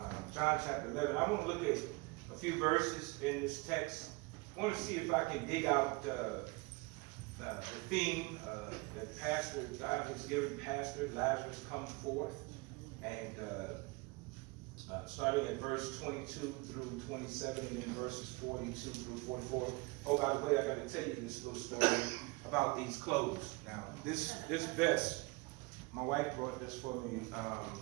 John chapter 11. I want to look at a few verses in this text. I want to see if I can dig out the theme that Pastor God has given Pastor Lazarus comes forth, and starting at verse 22 through 27, and then verses 42 through 44. Oh, by the way, I got to tell you this little story about these clothes. Now, this vest, my wife brought this for me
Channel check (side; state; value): left; quieter; 25.6 dB